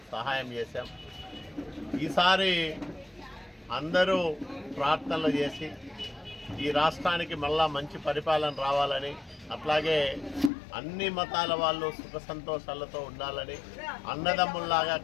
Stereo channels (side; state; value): right; drops out; at 10.5 s